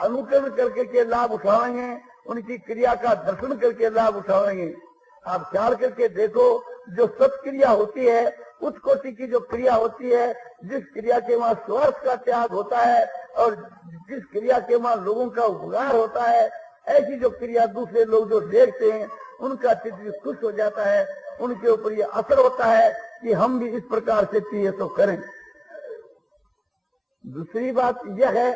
करके के लाभ उठाएंगे, उनकी क्रिया का दर्शन करके लाभ उठाएंगे। आप ख्याल करके देखो, जो सत्क्रिया होती है, उस कोटि की जो क्रिया होती है, जिस क्रिया के वहाँ स्वार्थ का त्याग होता है और जिस क्रिया के वहाँ लोगों का उपकार होता है, ऐसी जो क्रिया दूसरे लोग जो देखते हैं उनका चित्त भी खुश हो जाता है, उनके ऊपर ये असर होता है कि हम भी इस प्रकार से चाहिए तो करें। दूसरी बात यह है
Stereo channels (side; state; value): both; identical; correlation 1.00